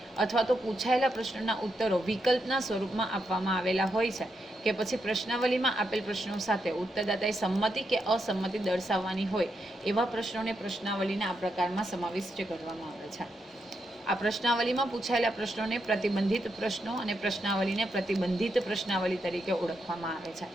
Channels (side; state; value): both; normal; correlation 0.83